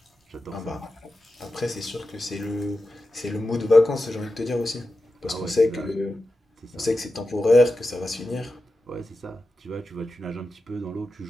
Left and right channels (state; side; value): normal; both; correlation 0.91